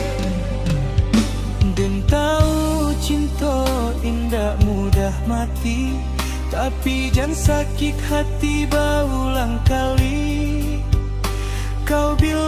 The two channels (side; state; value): both; identical; correlation 1.00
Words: Dan tahu cinta indah mudah mati, tapi jangan sakit hati berulang kali. Kau